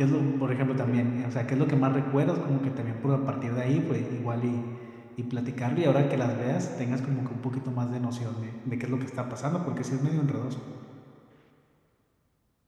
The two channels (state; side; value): identical; both; correlation 1.00